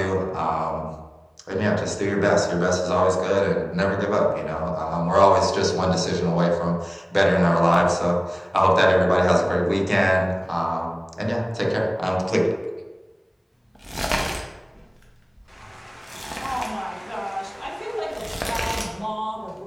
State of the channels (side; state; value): both; identical; correlation 1.00